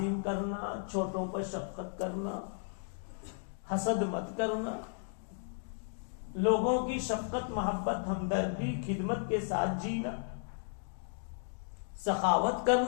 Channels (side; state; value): right; silent; digital silence